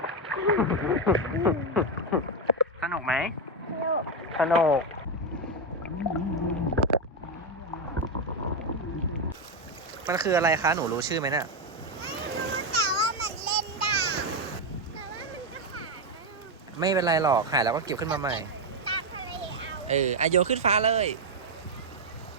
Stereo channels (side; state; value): both; normal; correlation 0.06